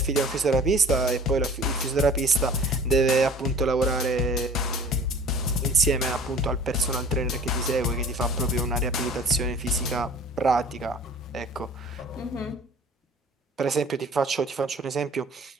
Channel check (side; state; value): both; normal; correlation 0.47